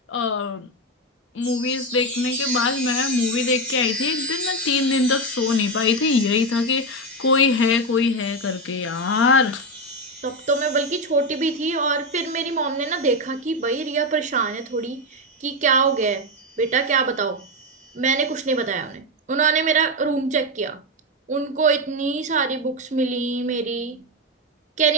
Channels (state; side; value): normal; both; correlation 0.10